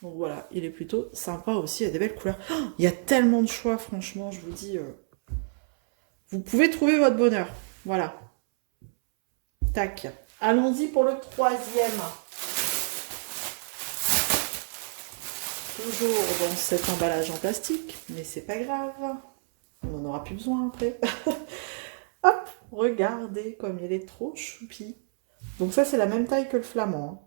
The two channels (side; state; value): left; silent; 60 dB below the other